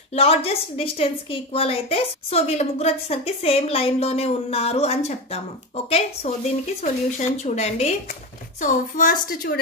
లార్జెస్ట్ డిస్టెన్స్ కి ఈక్వల్ అయితే సో వీళ్ళ ముగ్గురు వచ్చేసరికి సేమ్ లైన్ లోనే ఉన్నారు అని చెప్తాము. ఓకే, సో దీనికి సొల్యూషన్ చూడండి. సో ఫస్ట్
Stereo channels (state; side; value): normal; both; correlation 0.18